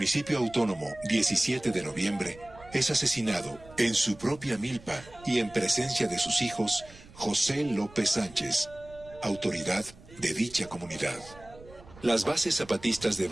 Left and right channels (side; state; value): right; noise; rumble, 21 dB below the sound